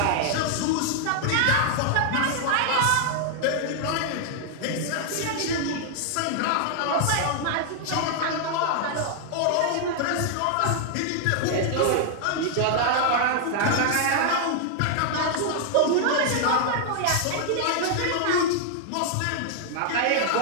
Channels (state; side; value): different; both; correlation -0.01